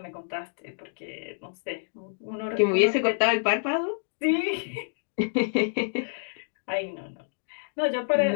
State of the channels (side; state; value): right; silent; digital silence